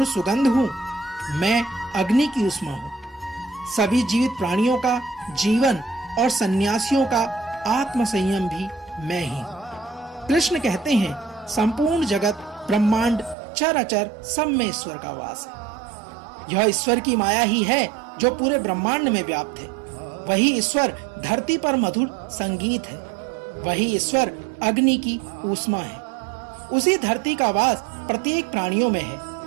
सुगंध हूँ, मैं अग्नि की उष्मा हूँ। सभी जीवित प्राणियों का जीवन और सन्यासियों का आत्म संयम भी मैं ही हूँ। कृष्ण कहते हैं, संपूर्ण जगत ब्रह्मांड चराचर सब में ईश्वर का वास है। यह ईश्वर की माया ही है जो पूरे ब्रह्मांड में व्याप्त है। वही ईश्वर धरती पर मधुर संगीत है। वही ईश्वर अग्नि की ऊष्मा है। उसी धरती का वास प्रत्येक प्राणियों में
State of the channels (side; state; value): left; drops out; at 13.4 s